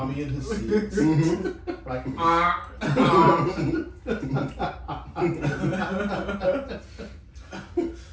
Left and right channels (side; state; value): both; identical; correlation 1.00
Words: and his seals. Like,